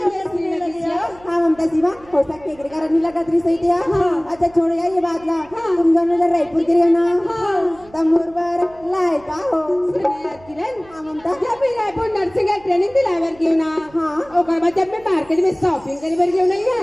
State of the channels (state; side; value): noise; right; hum, 24 dB below the sound